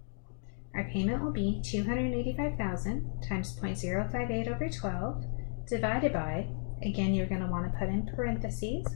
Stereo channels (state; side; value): silent; right; digital silence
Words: Our payment will be $285,000 times 0.058 over 12 divided by, again, you're going to want to put in parentheses,